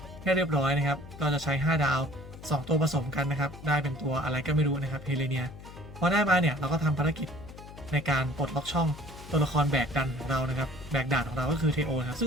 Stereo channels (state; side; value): noise; left; hum, 15 dB below the sound